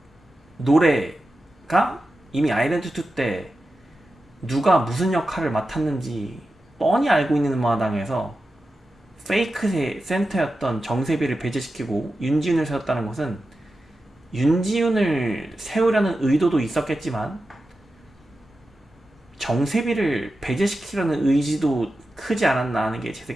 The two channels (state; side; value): normal; both; correlation 0.92